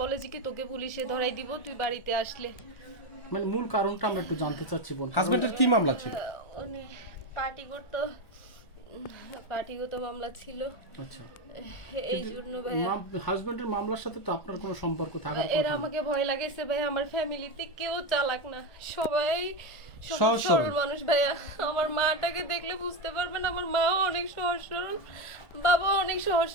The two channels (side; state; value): right; late; 1.4 ms